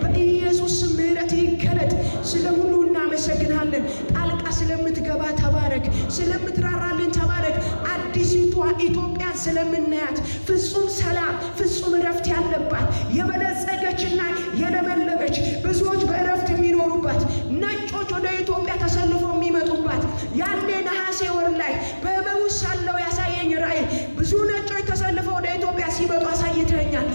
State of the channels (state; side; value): inverted; both; correlation -1.00